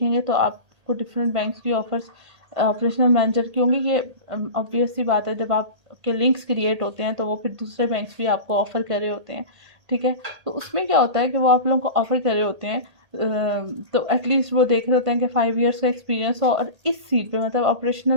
तो आपको डिफरेंट बैंक्स की ऑफ़र्स ऑपरेशनल मैनेजर की होंगी। ये ऑब्वियस सी बात है, जब आपके लिंक्स क्रिएट होते हैं तो वो फिर दूसरे बैंक्स भी आपको ऑफ़र कर रहे होते हैं। ठीक है, तो उसमें क्या होता है कि वो आप लोगों को ऑफ़र कर रहे होते हैं तो एटलीस्ट वो देख रहे होते हैं कि 5 इयर्स का एक्सपीरियंस हो, और इस सीट पे मतलब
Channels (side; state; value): left; late; 1.8 ms